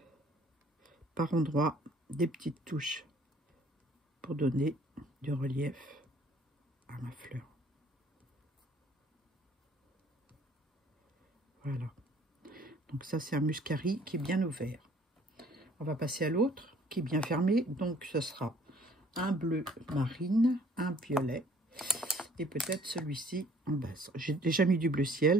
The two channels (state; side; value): normal; both; correlation 0.57